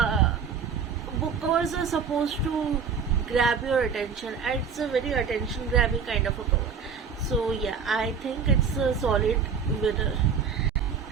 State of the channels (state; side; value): quieter; left; 6.2 dB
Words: book covers are supposed to grab your attention, and it's a very attention grabbing kind of a cover. So yeah, I think it's a solid winner.